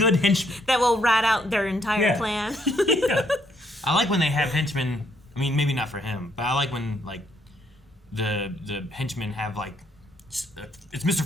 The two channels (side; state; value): both; normal; correlation 0.71